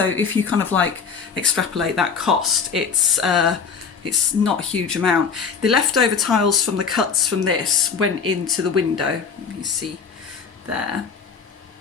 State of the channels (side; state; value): right; quieter; 5.9 dB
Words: if you kind of like extrapolate that cost, it's not a huge amount. The leftover tiles from the cuts from this went into the window. You see there.